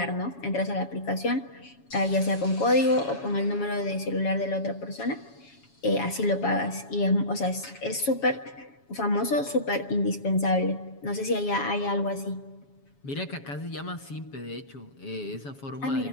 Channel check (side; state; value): right; late; 7.2 ms